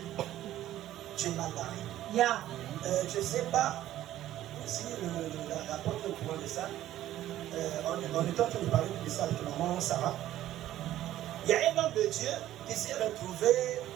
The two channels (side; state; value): left; quieter; 13.4 dB